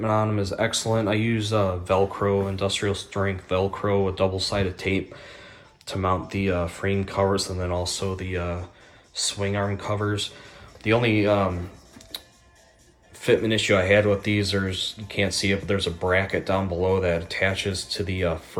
on them is excellent. I use Velcro, industrial strength Velcro with double-sided tape to mount the frame covers, and then also the swing arm covers. The only fitment issue I had with these, you can't see it, but there's a bracket down below that attaches to the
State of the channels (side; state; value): both; identical; correlation 1.00